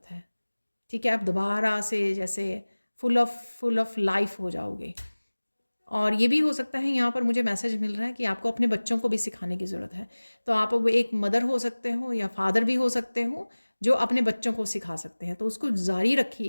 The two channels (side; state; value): both; inverted; correlation -1.00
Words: है, ठीक है। आप दोबारा से जैसे फुल ऑफ लाइफ हो जाओगे। और ये भी हो सकता है, यहाँ पर मुझे मैसेज मिल रहा है कि आपको अपने बच्चों को भी सिखाने की ज़रूरत है। तो आप वो एक मदर हो सकते हो या फादर भी हो सकते हो जो अपने बच्चों को सिखा सकते हैं, तो उसको जारी